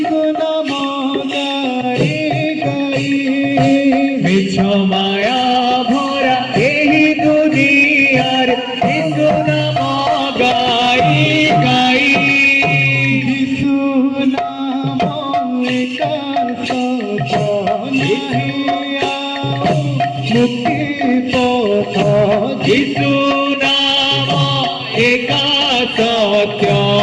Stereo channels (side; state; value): both; identical; correlation 1.00